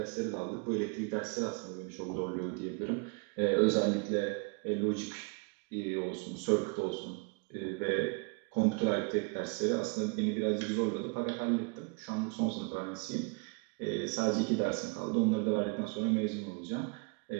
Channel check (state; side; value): quieter; left; 31.9 dB